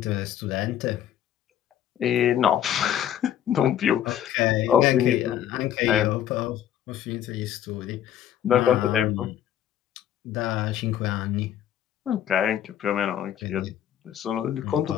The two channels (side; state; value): right; quieter; 10.7 dB